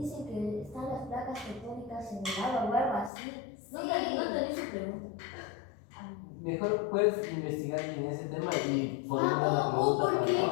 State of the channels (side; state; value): right; drops out; at 3.1 s